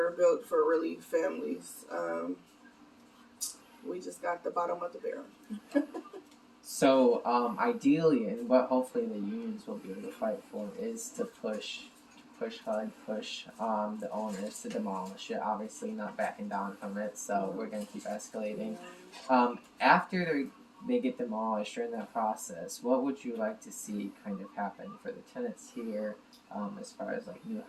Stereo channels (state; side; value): identical; both; correlation 1.00